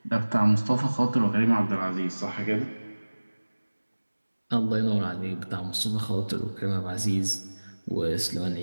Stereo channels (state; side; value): inverted; both; correlation -1.00